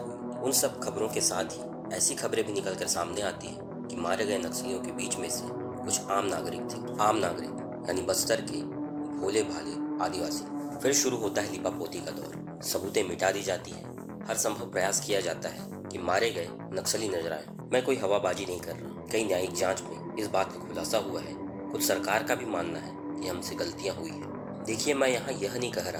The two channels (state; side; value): identical; both; correlation 1.00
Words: उन सब खबरों के साथ ही ऐसी खबरें भी निकलकर सामने आती हैं कि मारे गए नक्सलियों के बीच में से कुछ आम नागरिक थे। आम नागरिक यानी बस्तर के भोले भाले आदिवासी। फिर शुरू होता है लिपापोती का दौर। सबूतें मिटा दी जाती है, हर संभव प्रयास किया जाता है कि मारे गए नक्सली नजर आए। मैं कोई हवाबाजी नहीं कर रहा। कई न्यायिक जांच में इस बात का खुलासा हुआ है। खुद सरकार का भी मानना है कि हमसे गलतियां हुई है। देखिए, मैं यहाँ यह नहीं कह